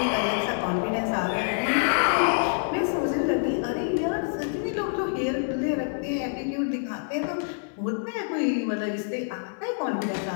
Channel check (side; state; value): right; silent; 60 dB below the other